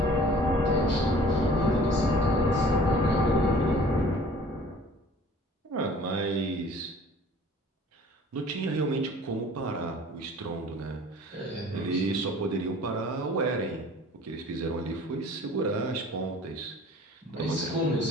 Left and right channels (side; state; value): both; normal; correlation 0.49